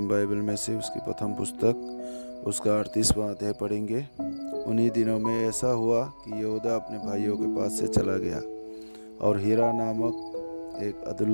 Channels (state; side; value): inverted; both; correlation -1.00